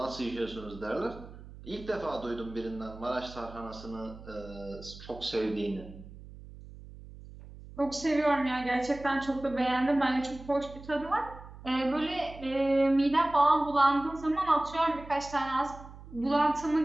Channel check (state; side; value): noise; right; hum, 16 dB below the sound